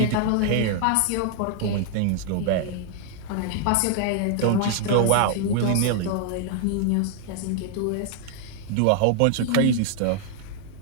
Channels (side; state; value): both; different; correlation 0.00